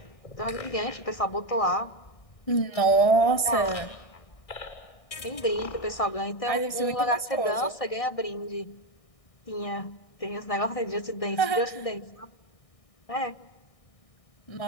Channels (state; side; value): late; right; 1.6 ms